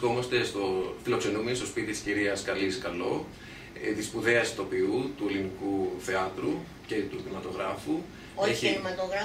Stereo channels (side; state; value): both; identical; correlation 1.00